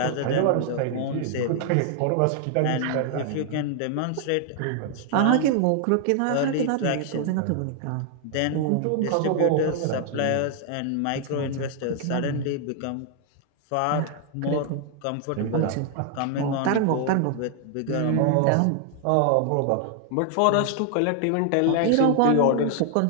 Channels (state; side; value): different; both; correlation 0.00